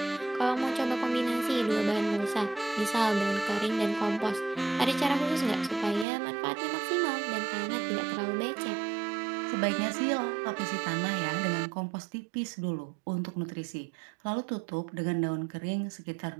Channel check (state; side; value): drops out; left; at 6.1 s